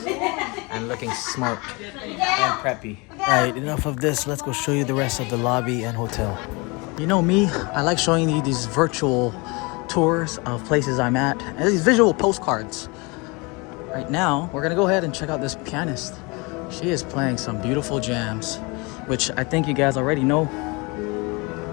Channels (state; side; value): quieter; right; 27.7 dB